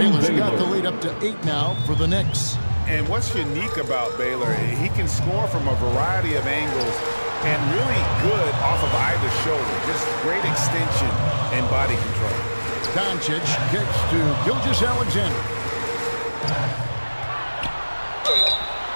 got the lead up to 8 now for the Knicks. And what's unique about Baylor, he can score from a variety of angles and really good off of either shoulder. Just great extension and body control. Doncic gets to Gilgeous-Alexander.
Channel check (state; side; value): inverted; both; correlation -1.00